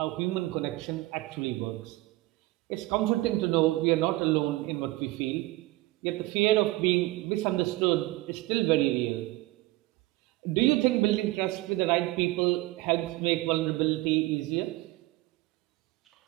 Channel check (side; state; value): left; quieter; 19.4 dB